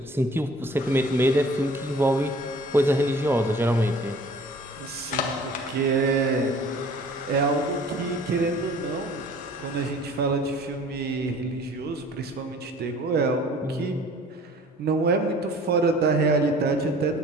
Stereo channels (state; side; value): normal; both; correlation 0.49